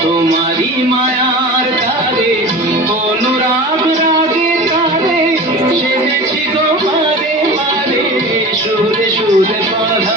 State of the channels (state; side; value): normal; both; correlation 0.34